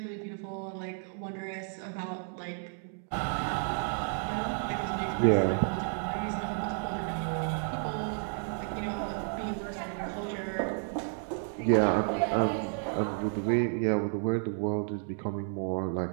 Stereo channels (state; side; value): silent; left; 57 dB below the other